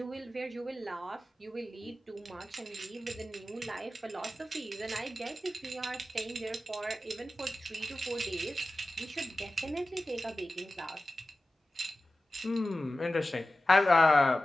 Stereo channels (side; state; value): both; normal; correlation 0.95